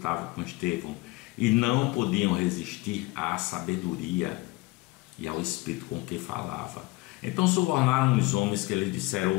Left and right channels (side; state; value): right; quieter; 21.7 dB